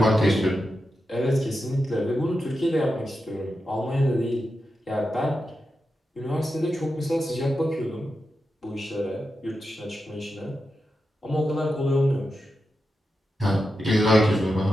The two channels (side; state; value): both; normal; correlation 0.89